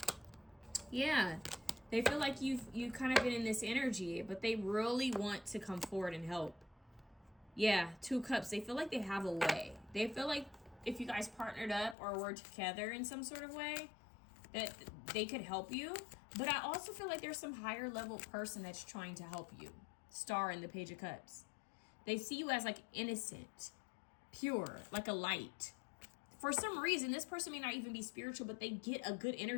Yeah. They feel like you've kind of been in this energy, but they really want to come forward and help. Yeah, Two of Cups. They feel like they have a way. They feel like if you guys partnered up or were together in some sort of way, that they could help you. But I also feel like there's some higher level person that's trying to help you. Star in the Page of Cups. They see you as like innocent, pure, like a light. For some reason, this person may not even be spiritual, but they get a good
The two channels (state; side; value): drops out; right; at 12.0 s